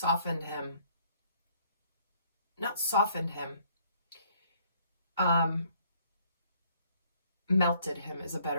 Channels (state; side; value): inverted; both; correlation -0.63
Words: him. Not softened him. Melted him is a